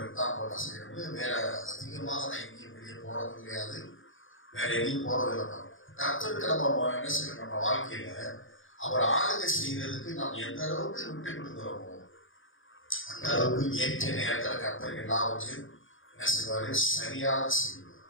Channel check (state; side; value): late; right; 0.58 ms